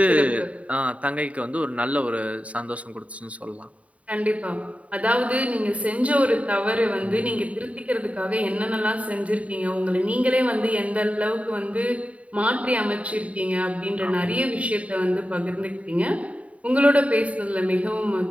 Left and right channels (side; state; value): left; late; 0.066 ms